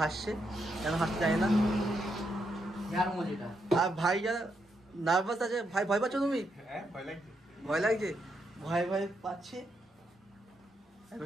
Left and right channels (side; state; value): both; normal; correlation 0.80